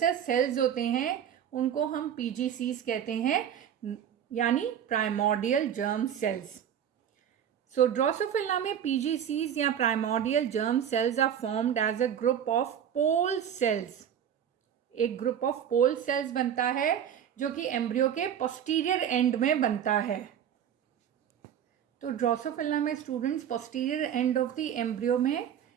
सेल्स होते हैं उनको हम PGCs कहते हैं, यानी primordial germ cells. So Drosophila में PGCs या primordial germ cells are formed as a group of pole cells. एक ग्रुप ऑफ पोल सेल्स बनता है जो कि एम्ब्रियो के पोस्टीरियर एंड में बनता है। तो ड्रोसोफिला में students posterior end of the embryo में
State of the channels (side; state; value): left; quieter; 9.2 dB